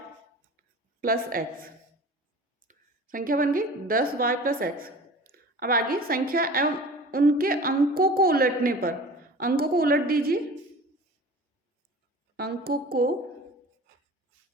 + x, संख्या बन गई 10y + x। अब आगे संख्या एवं उनके अंकों को उलटने पर, अंकों को उलट दीजिए, अंकों को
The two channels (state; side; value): normal; both; correlation 0.40